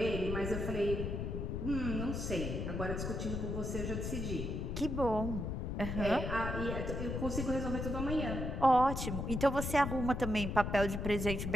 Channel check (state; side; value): noise; left; rumble, 3 dB below the sound